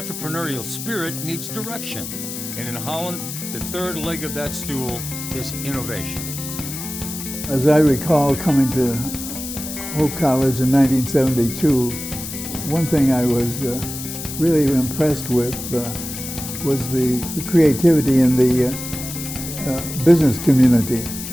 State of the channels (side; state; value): left; noise; hiss, 8 dB below the sound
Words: spirit needs direction. And in Holland, the third leg of that stool is innovation. As I recall coming to Hope College in 1972, one thing I was really impressed with was the creativity in the business community.